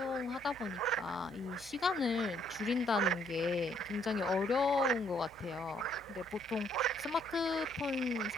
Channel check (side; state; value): both; normal; correlation 0.68